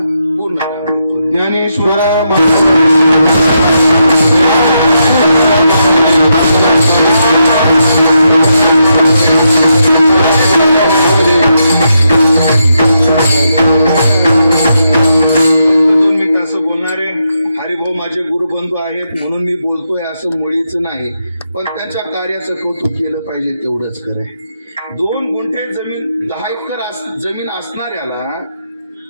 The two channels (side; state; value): both; inverted; correlation -0.82